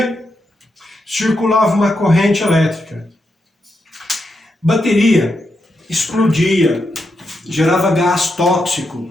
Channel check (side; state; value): both; normal; correlation 0.84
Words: circulava uma corrente elétrica. Bateria explodia, gerava gás